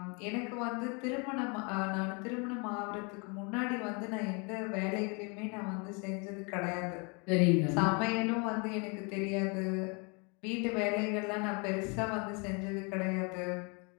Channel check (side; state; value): right; quieter; 32.7 dB